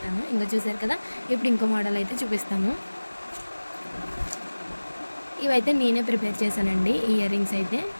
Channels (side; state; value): both; inverted; correlation -1.00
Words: ఇంకా చూసారు కదా, ఇప్పుడు ఇంకో మోడల్ అయితే చూపిస్తాను. ఇవైతే నేనే ప్రిపేర్ చేశానండి. ఈ ఇయర్ రింగ్స్ అయితే